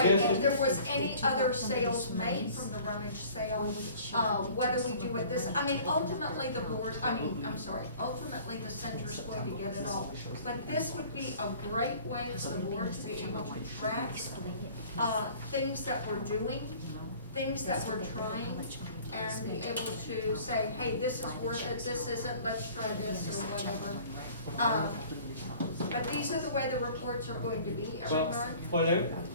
if suggestion- there was any other sales made from the rummage sale, whether we do it this, I mean, ultimately the board, ultimately the center's going to get it all. But this would be a great way for the board to be able to track, things that we're doing, things that we're trying, and be able to say, hey, this is worth it, this isn't, let's try this, or whatever. But these are the way the reports are going to be every month. Well,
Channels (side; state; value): both; inverted; correlation -0.49